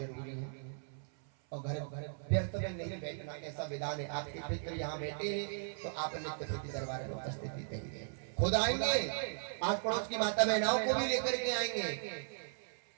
है। और घर व्यर्थ में नहीं बैठना, ऐसा विधान है। आपके पितृ यहाँ बैठे हैं तो आप नित्य प्रति दरबार में उपस्थिति देंगे। खुद आएंगे, आस पड़ोस की माता बहनाओं को भी लेकर के आएंगे।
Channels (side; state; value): left; silent; 53 dB below the other